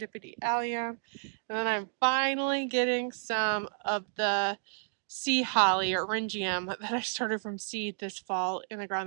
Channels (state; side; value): silent; left; digital silence